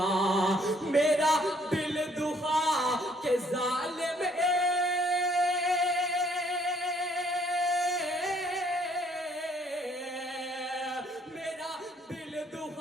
मेरा दिल दुखा के जालिम मेरा दिल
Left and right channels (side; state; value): both; normal; correlation 0.64